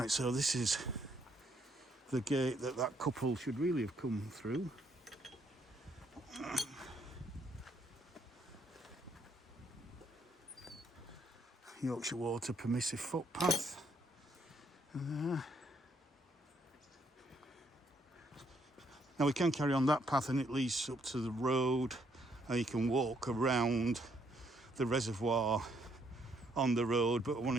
so this is the gate that couple should really have come through. Yorkshire Water permissive footpath. Now we can carry on that path and it leads up to the road, and you can walk around the reservoir on the road, but I want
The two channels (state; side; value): normal; both; correlation 0.71